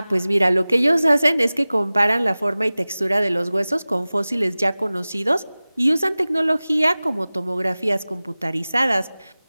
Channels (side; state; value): both; inverted; correlation -0.98